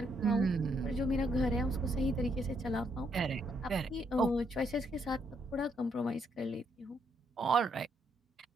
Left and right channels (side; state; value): both; normal; correlation 0.74